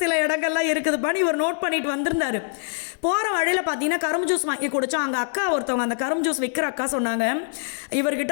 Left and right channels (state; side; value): silent; right; digital silence